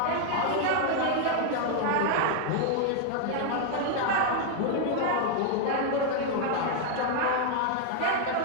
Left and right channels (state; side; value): different; both; correlation 0.00